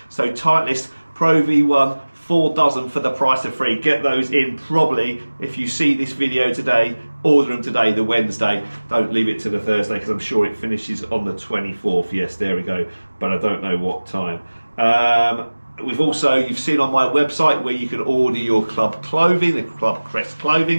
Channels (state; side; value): inverted; both; correlation -1.00